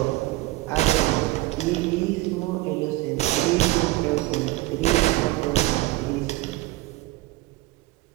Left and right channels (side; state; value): left; quieter; 19.2 dB